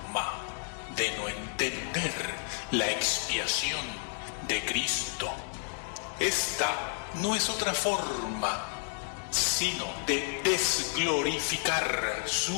de no entender la expiación de Cristo. Esta no es otra forma sino de desglorificar su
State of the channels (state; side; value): silent; right; 57 dB below the other